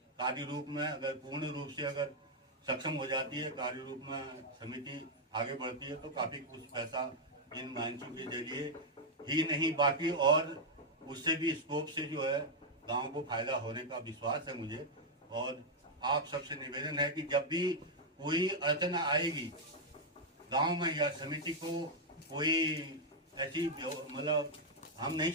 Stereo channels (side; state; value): both; normal; correlation -0.01